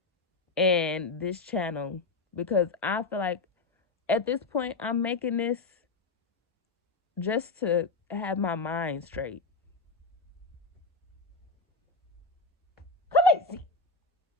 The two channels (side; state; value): right; quieter; 3.7 dB